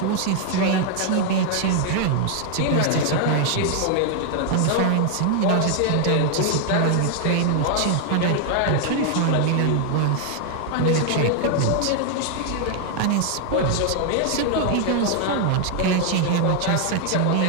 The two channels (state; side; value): different; both; correlation 0.00